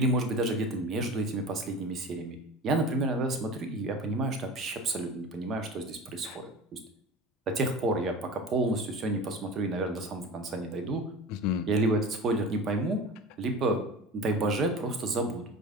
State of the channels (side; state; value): both; normal; correlation 0.34